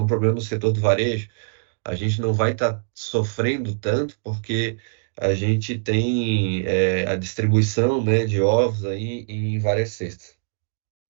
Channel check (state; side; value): silent; left; digital silence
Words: um problema no setor do varejo. A gente não vai estar sofrendo tanto porque a gente tem a distribuição, né, de ovos aí em várias cestas.